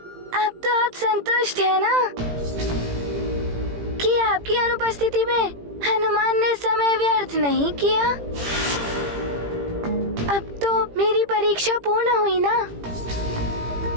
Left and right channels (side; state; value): left; late; 18 ms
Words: अब तो आप संतुष्ट हैं ना कि आपकी अनुपस्थिति में हनुमान ने समय व्यर्थ नहीं किया? अब तो मेरी परीक्षा पूर्ण हुई ना,